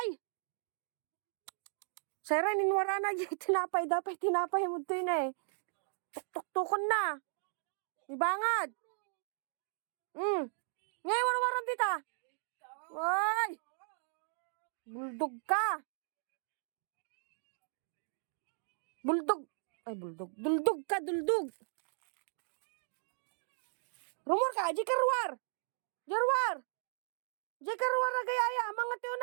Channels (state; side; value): silent; left; digital silence